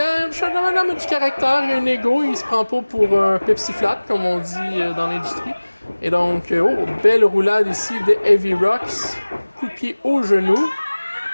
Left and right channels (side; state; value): both; inverted; correlation -1.00